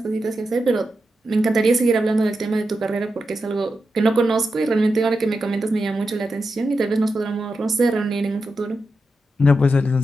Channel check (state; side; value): normal; both; correlation 0.88